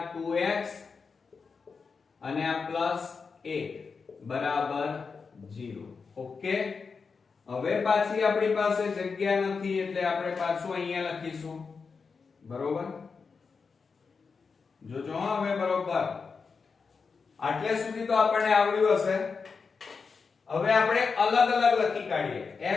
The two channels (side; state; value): right; quieter; 5.1 dB